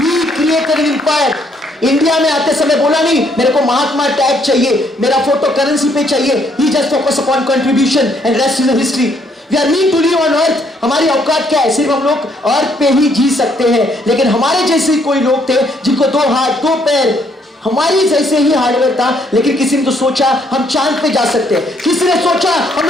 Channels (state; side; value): normal; both; correlation 0.69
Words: created an empire. India में आते समय बोला नहीं मेरे को महात्मा टैग चाहिए, मेरा फोटो करेंसी पे चाहिए. He just focus upon contribution and rest is history. We are mean to live on earth. हमारी औकात क्या है? सिर्फ हम लोग अर्थ पे ही जी सकते हैं. लेकिन हमारे जैसे कोई लोग थे जिनको 2 हाथ 2 पैर, हमारी जैसे ही हार्डवेयर था. लेकिन किसी ने तो सोचा हम चांद पे जा सकते हैं, किसी ने सोचा हम